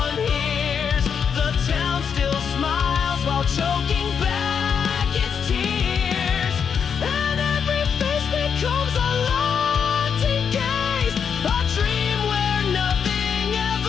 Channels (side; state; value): right; quieter; 7.0 dB